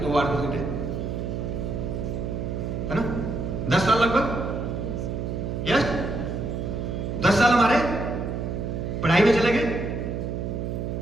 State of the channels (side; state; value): right; noise; hum, 3 dB below the sound